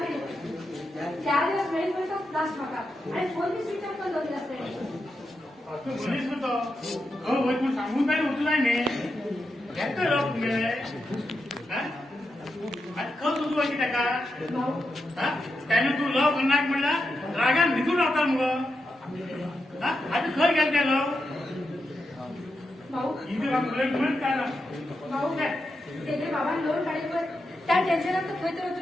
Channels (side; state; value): both; normal; correlation 0.86